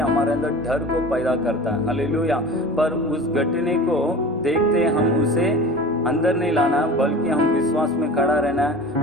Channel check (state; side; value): normal; both; correlation 0.37